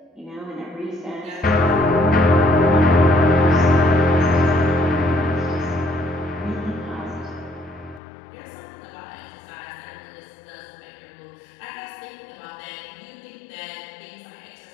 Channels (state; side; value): drops out; right; at 8.0 s